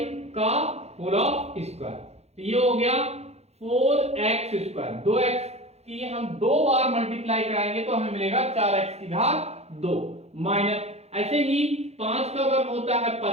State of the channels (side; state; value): left; late; 0.31 ms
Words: का होल ऑफ स्क्वायर। तो ये हो गया 4x स्क्वायर। 2x की हम दो बार मल्टीप्लाई कराएंगे तो हमें मिलेगा 4x की घात 2 माइनस, ऐसे ही 5 का वर्ग होता है